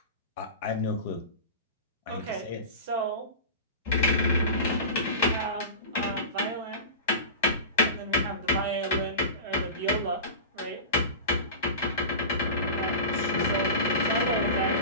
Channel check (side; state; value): both; inverted; correlation -0.30